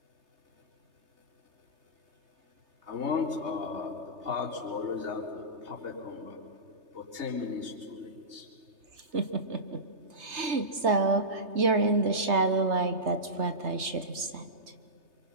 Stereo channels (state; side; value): late; left; 3.3 ms